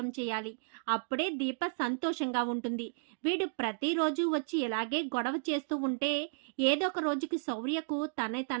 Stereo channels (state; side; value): silent; left; digital silence